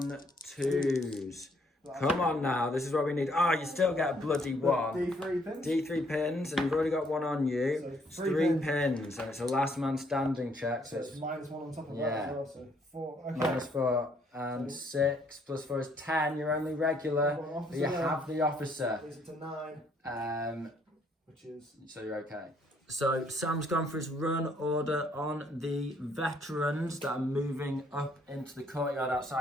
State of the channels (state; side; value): normal; both; correlation 0.67